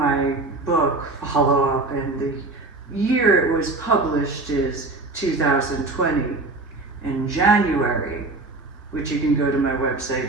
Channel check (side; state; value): left; quieter; 3.2 dB